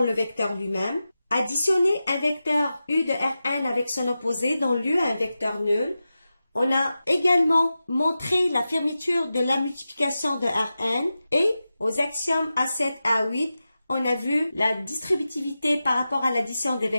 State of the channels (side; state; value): both; inverted; correlation -0.93